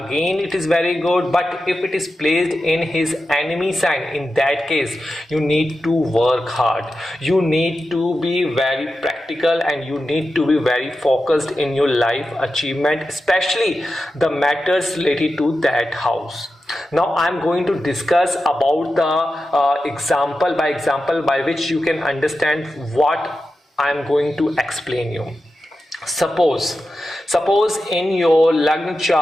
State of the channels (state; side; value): normal; both; correlation 0.91